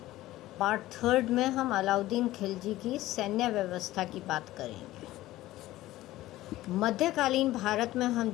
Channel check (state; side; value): quieter; right; 16.2 dB